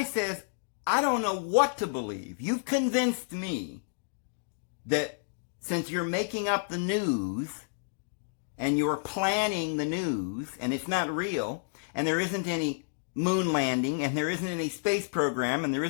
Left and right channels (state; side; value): silent; right; digital silence